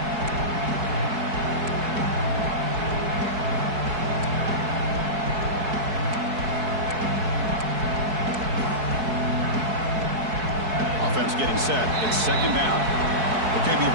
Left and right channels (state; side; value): late; left; 4.6 ms